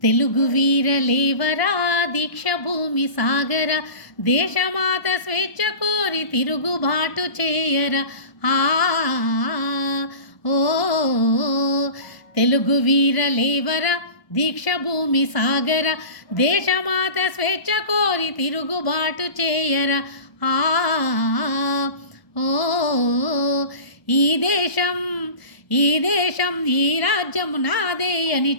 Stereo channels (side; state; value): right; late; 1.0 ms